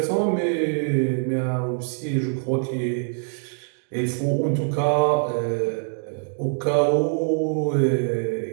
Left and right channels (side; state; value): left; silent; 63 dB below the other